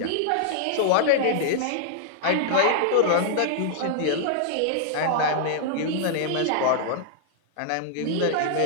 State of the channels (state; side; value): different; both; correlation -0.01